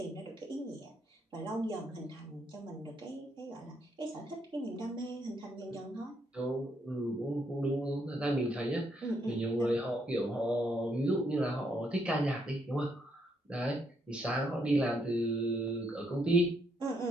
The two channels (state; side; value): normal; both; correlation 0.74